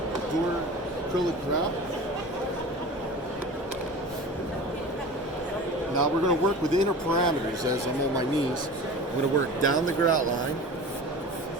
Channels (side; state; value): both; normal; correlation 0.35